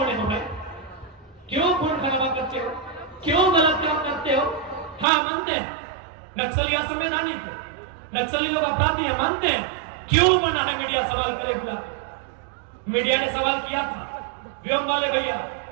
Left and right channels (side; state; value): left; drops out; at 5.1 s